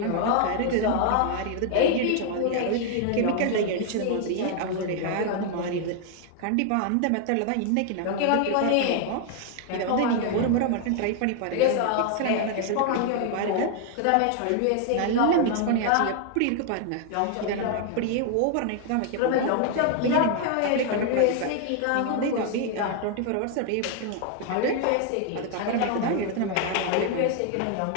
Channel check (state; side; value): different; both; correlation 0.00